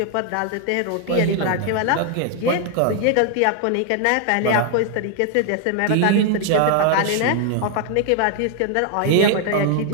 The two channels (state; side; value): different; both; correlation 0.00